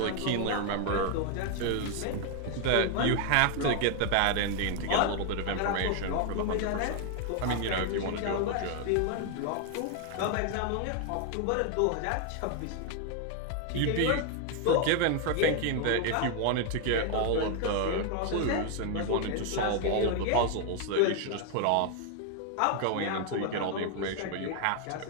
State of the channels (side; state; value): both; different; correlation 0.00